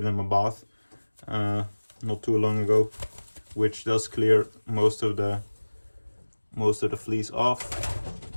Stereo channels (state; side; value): inverted; both; correlation -1.00